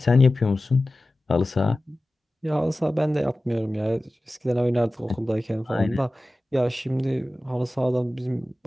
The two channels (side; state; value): both; normal; correlation 0.96